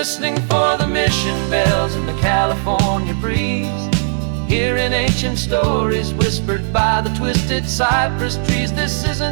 for the mission bells in the California breeze, hearing ancient stories whispered by the twisted cypress trees. This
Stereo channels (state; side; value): silent; left; 68 dB below the other